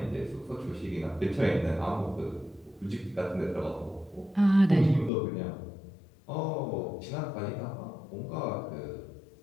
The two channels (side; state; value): right; drops out; at 5.1 s